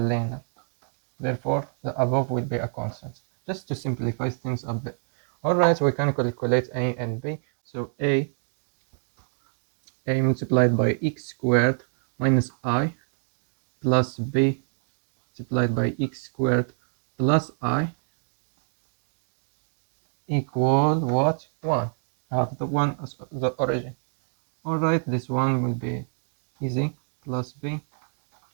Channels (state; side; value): silent; left; 60 dB below the other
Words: Therefore, the above will be a constant. Just to simplify things a bit. Alright, we can calculate a and b. So a multiplied by x squared minus I plus b multiplied by x squared plus I equal what? 1. I have the 1 as the origin. Alright, this one will be easy. Plus b